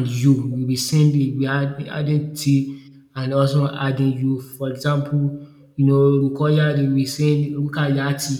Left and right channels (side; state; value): both; identical; correlation 1.00